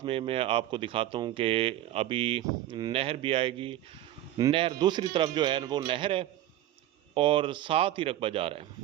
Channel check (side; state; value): left; quieter; 13.3 dB